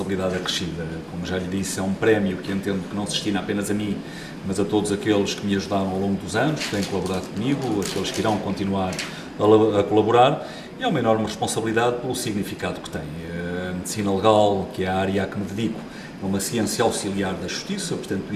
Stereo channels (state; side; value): identical; both; correlation 1.00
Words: acrescida. Como já lhe disse, é um prémio que entendo que não se destina apenas a mim, mas a todos aqueles que me ajudaram ao longo dos anos, que têm colaborado comigo, aqueles que irão continuar a colaborar, e é uma enorme responsabilidade pelo significado que tem. A medicina legal, que é a área a que me dedico, é uma ciência auxiliar da justiça, portanto